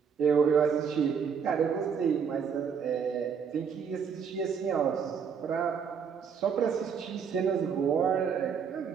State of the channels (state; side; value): quieter; left; 6.8 dB